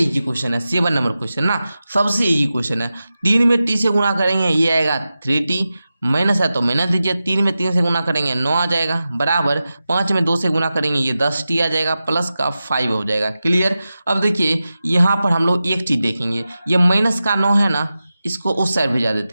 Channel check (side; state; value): both; inverted; correlation -0.93